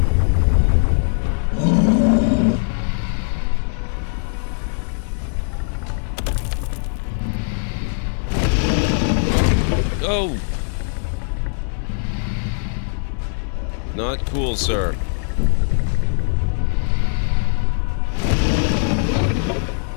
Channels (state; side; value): silent; right; digital silence